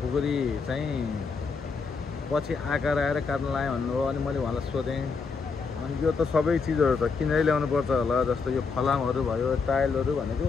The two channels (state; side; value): quieter; right; 4.8 dB